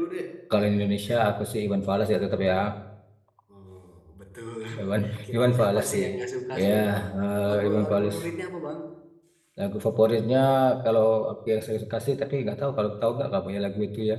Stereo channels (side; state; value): both; identical; correlation 1.00